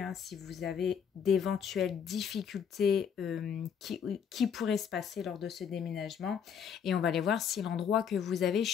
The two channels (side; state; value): right; quieter; 7.6 dB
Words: si vous avez d'éventuelles difficultés qui pourraient se passer lors de ce déménagement. Et on va aller voir si l'endroit que vous avez